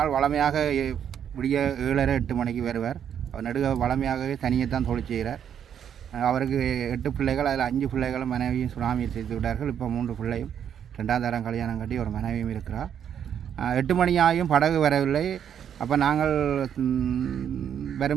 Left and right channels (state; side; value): quieter; left; 8.8 dB